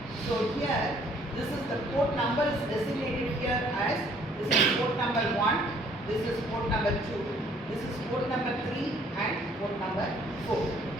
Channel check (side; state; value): both; normal; correlation 0.61